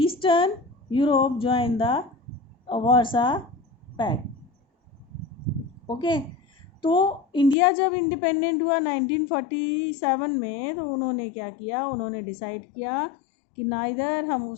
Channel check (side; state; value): right; drops out; at 7.6 s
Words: Europe joined the Warsaw pact. Okay. तो India जब independent हुआ 1947 में, तो उन्होंने क्या किया, उन्होंने decide किया कि ना इधर हम